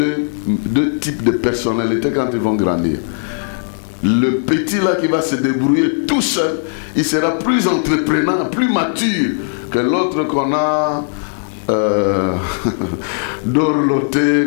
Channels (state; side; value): silent; right; digital silence